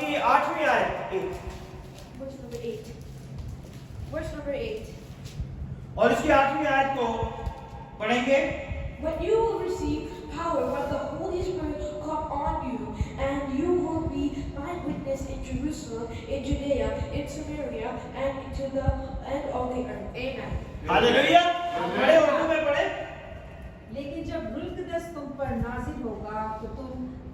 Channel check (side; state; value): both; identical; correlation 1.00